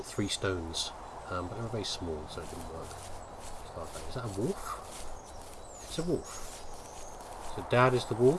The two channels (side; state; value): both; identical; correlation 1.00